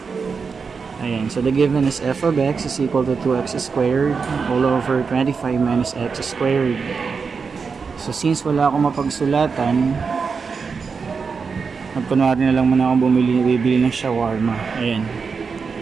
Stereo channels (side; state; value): left; quieter; 5.3 dB